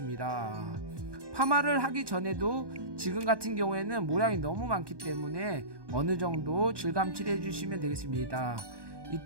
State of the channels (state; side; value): late; left; 1.2 ms